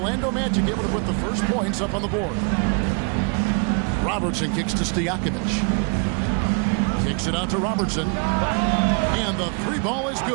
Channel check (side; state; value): left; quieter; 37.3 dB